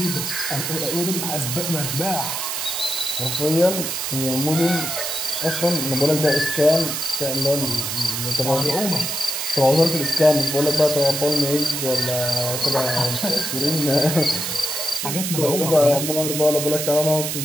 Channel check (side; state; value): right; noise; hiss, 3 dB below the sound